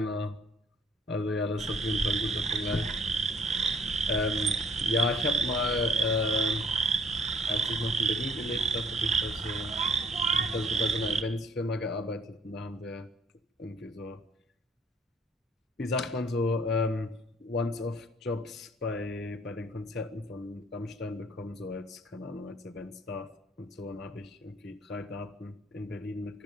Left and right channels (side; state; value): both; normal; correlation 0.60